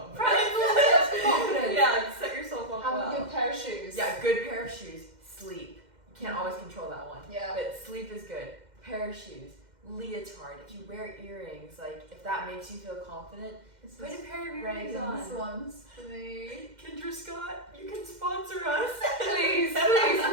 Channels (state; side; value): late; left; 2.1 ms